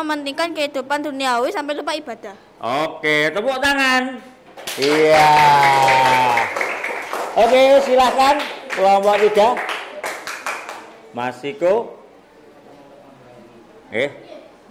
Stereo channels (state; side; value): identical; both; correlation 1.00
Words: kehidupan duniawi sampai lupa ibadah. Oke, tepuk tangan. Iya. Oke, silahkan kelompok 3. Mas Iko.